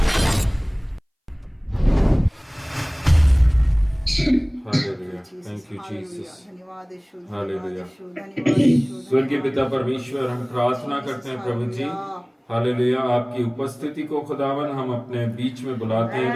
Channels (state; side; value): identical; both; correlation 1.00